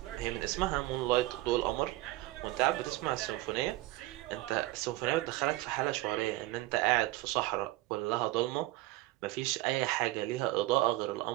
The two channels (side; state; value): left; quieter; 18.0 dB